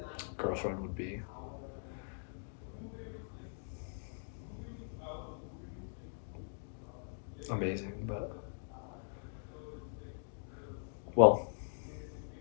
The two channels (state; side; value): silent; right; digital silence